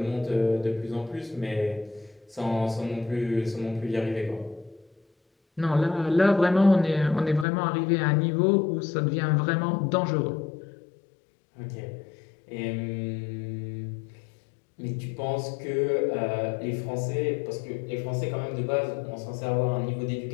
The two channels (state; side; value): drops out; right; at 7.5 s